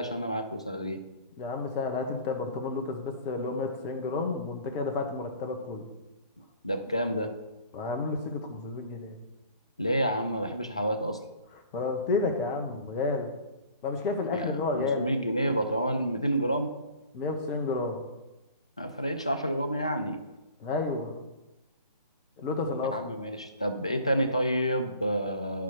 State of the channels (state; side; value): inverted; both; correlation -0.48